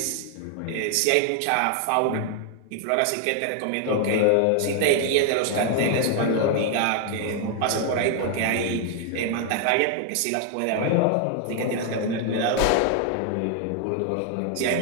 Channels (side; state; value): both; different; correlation 0.00